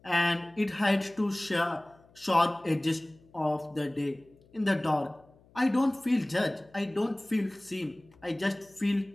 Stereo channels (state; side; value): noise; left; hum, 29 dB below the sound